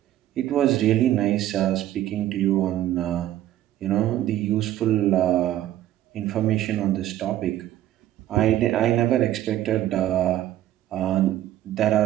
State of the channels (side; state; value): left; quieter; 13.3 dB